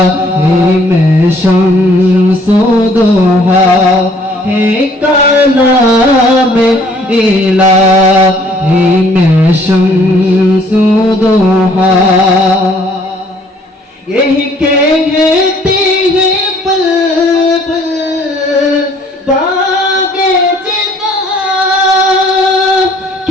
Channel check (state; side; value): normal; both; correlation 0.60